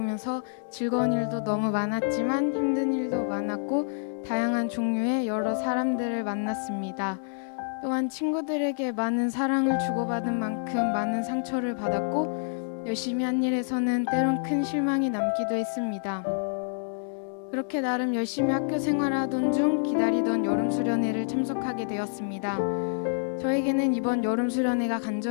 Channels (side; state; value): right; silent; digital silence